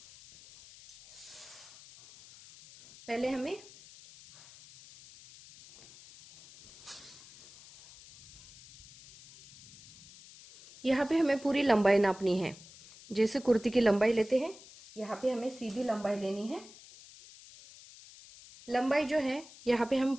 पहले हमें यहाँ पे हमें पूरी लंबाई नापनी है। जैसे कुर्ती की लंबाई लेते हैं, यहाँ पे हमें सीधी लंबाई लेनी है। लंबाई जो है यहाँ पे हम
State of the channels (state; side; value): noise; left; hiss, 20 dB below the sound